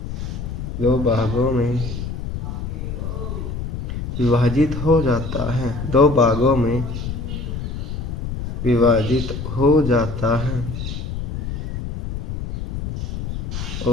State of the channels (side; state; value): left; noise; rumble, 5 dB below the sound